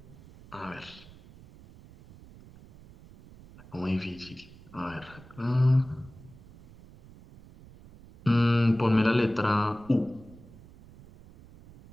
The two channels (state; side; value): noise; right; rumble, 21 dB below the sound